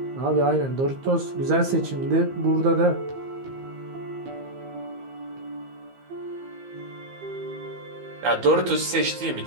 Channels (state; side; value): late; left; 15 ms